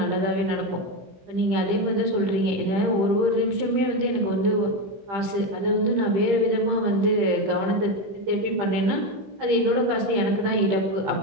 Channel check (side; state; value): left; late; 15 ms